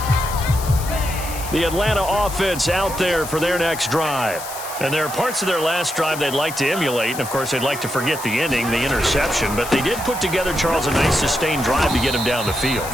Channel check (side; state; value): left; noise; hiss, 11 dB below the sound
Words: The Atlanta offense out there for their next drive. And there are parts of their last drive they'd like to emulate. And, of course, they'd like to forget the ending, the interception. But they did put together, Charles, a nice sustained drive to get him down the field.